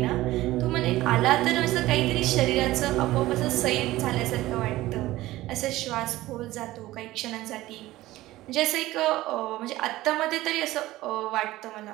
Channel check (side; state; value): left; quieter; 16.9 dB